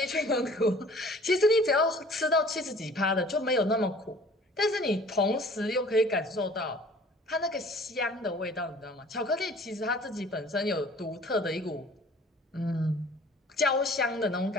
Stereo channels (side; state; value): both; normal; correlation 0.50